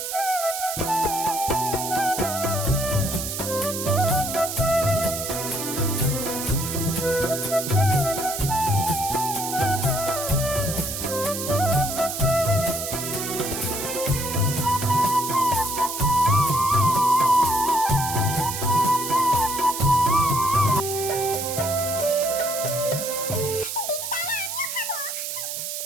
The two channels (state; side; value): noise; right; hiss, 5 dB below the sound